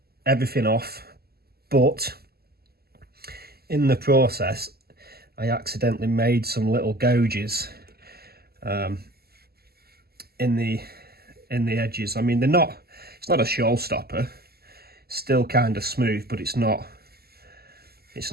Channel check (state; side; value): late; left; 0.46 ms